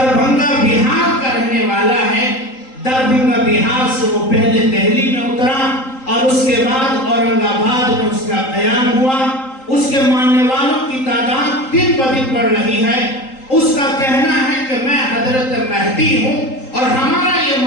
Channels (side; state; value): right; late; 3.8 ms